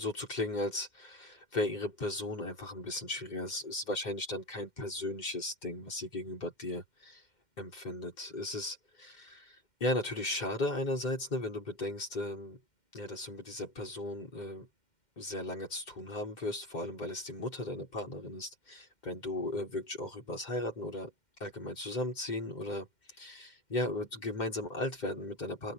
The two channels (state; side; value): late; right; 2.1 ms